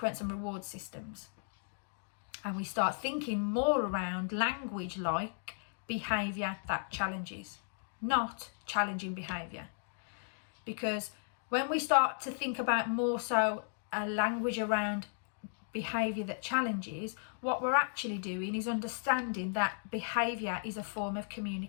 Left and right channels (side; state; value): right; silent; digital silence